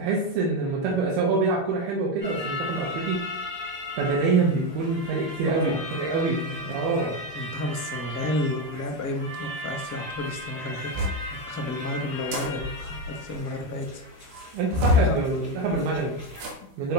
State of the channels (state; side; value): late; left; 13 ms